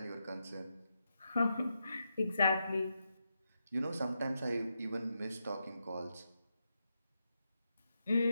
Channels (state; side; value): inverted; both; correlation -0.85